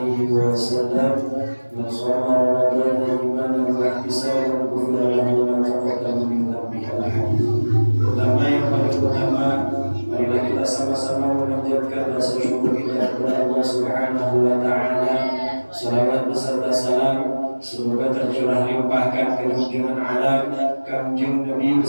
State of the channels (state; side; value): inverted; both; correlation -1.00